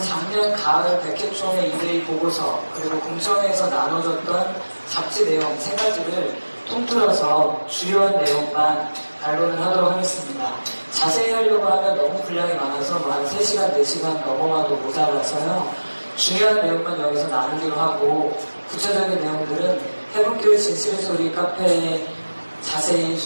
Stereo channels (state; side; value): inverted; both; correlation -1.00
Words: 작년 가을 백회총회 이대위 보고서, 그리고 공청회에서 나눠졌던 잡지 내용 세 가지를 통틀어서 주요한 내용만 반론을 하도록 하겠습니다. 자세히 하려고 하면 너무 분량이 많아서 한 3시간, 4시간 넘어가도 모자라서요. 중요한 내용만 여기서 나누기로 하고 구체적인 내용들은 해본교회 진실의 소리 카페에 자세히